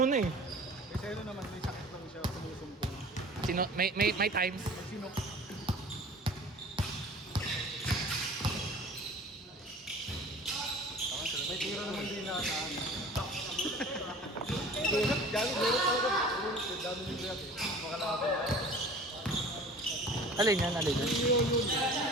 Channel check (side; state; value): both; normal; correlation 0.43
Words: na eh. Kasi ano naman, may sakit lang siya. Sumusumpong. May times. Sinok. May tira naman din na saan. Gago, meron talaga. Dami yung react eh. Makalaban. Alin yan?